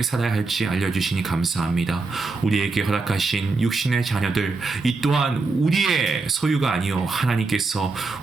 살아야 할지 알려주시니 감사합니다. 우리에게 허락하신 육신의 자녀들, 이 또한 우리의 소유가 아니요 하나님께서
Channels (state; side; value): quieter; left; 3.9 dB